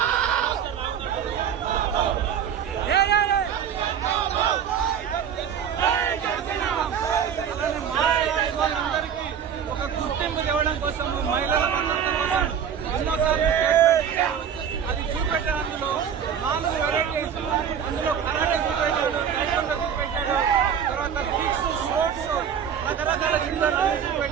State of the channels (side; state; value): left; quieter; 8.2 dB